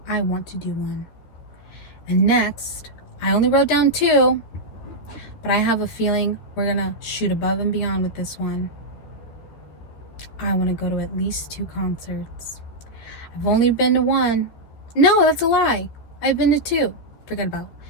I want to do one. And next, I only wrote down 2, but I have a feeling we're gonna shoot above and beyond with this one. I want to go to at least 2 concerts. I've only been to 1. No, that's a lie. I've been to 2. Forget about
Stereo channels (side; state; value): right; late; 13 ms